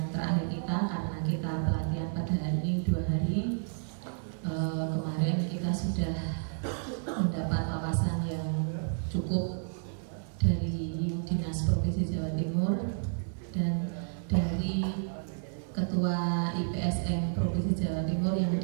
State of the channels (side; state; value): left; silent; digital silence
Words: terakhir kita karena kita pelatihan pada hari ini 2 hari. Kemarin kita sudah mendapat wawasan yang cukup dari Dinas Provinsi Jawa Timur dan dari Ketua IPSM Provinsi Jawa Timur yang